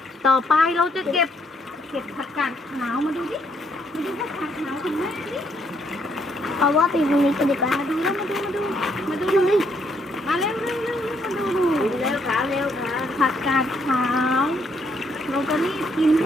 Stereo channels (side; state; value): both; normal; correlation 0.71